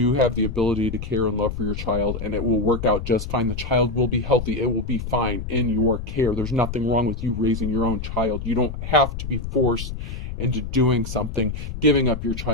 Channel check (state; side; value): noise; left; rumble, 7 dB below the sound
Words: have the ability to care and love for your child, and it will work out just fine. The child will be healthy. It will be fine in your care. There's nothing wrong with you raising your own child. You don't have to be forced into doing something, giving up your